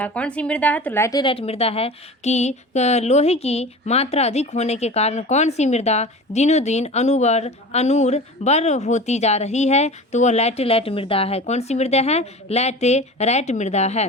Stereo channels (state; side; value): normal; both; correlation 0.35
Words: कौन सी मृदा है? तो लैटेराइट मृदा है कि लोहे की मात्रा अधिक होने के कारण कौन सी मृदा दिनों दिन अनूर्बर होती जा रही है? तो वह लैटेराइट मृदा है। कौन सी मृदा है? लैटेराइट मृदा